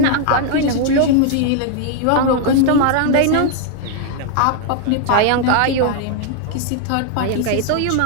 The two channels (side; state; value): both; different; correlation 0.00